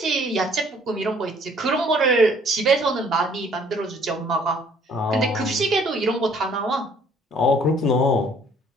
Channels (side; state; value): both; normal; correlation 0.59